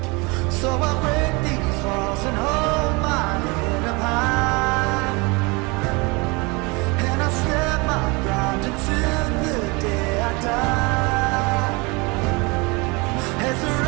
So I break these walls and hold my head up high, and I step my ground until the day I die. As the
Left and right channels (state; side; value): quieter; left; 27.1 dB